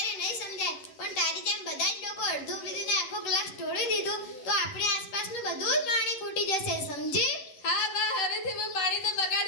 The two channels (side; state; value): right; late; 11 ms